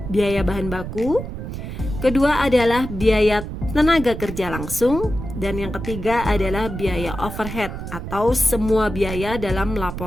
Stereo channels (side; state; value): right; noise; rumble, 8 dB below the sound